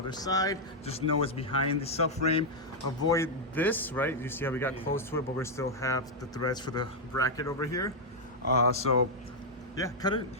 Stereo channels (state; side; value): normal; both; correlation -0.02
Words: side, just know it's behind the subframe. Avoid this, right? You see how we got close to it, but we still have the threads for the bracket over here. So yeah, cut it,